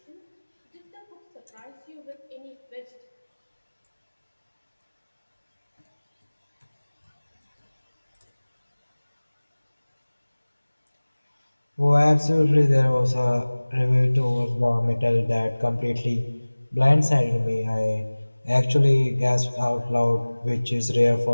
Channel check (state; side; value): inverted; both; correlation -1.00